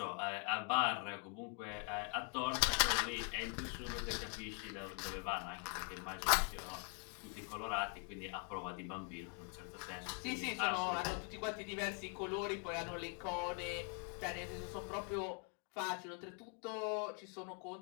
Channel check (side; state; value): right; quieter; 37.3 dB